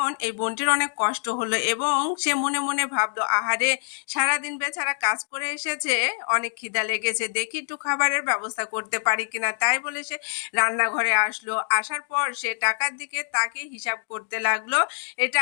এই বোনটির অনেক কষ্ট হলো এবং সে মনে মনে ভাবলো, আহারে সারাদিন বেচারা কাজ করে এসেছে, অনেক খিদা লেগেছে, দেখি একটু খাবারের ব্যবস্থা করতে পারি কিনা। তাই বলে সে রান্নাঘরে আসলো। আসার পর সে টাকার দিকে তাকে হিসাব করতে লাগলো, এই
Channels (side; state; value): right; silent; 62 dB below the other